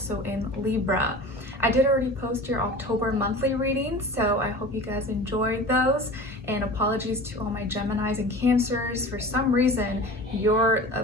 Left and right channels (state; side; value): normal; both; correlation 0.37